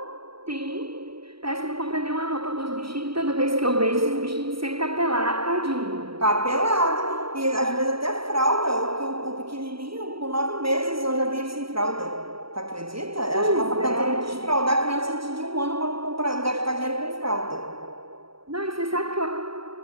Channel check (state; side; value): late; left; 0.75 ms